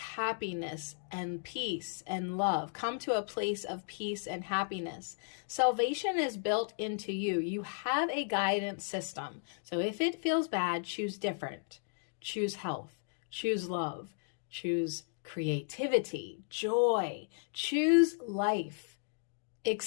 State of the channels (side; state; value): right; silent; digital silence